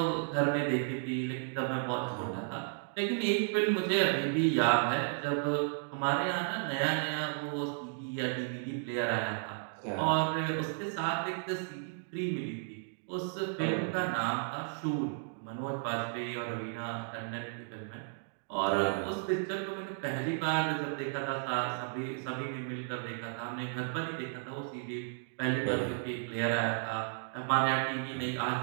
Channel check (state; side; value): silent; left; digital silence